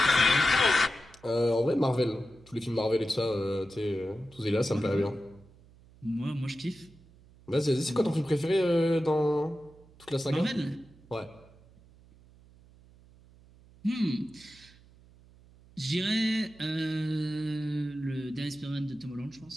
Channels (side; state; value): right; noise; hum, 26 dB below the sound